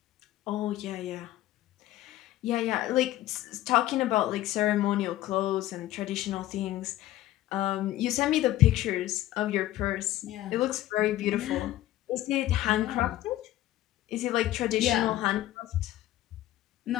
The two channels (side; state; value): right; quieter; 14.6 dB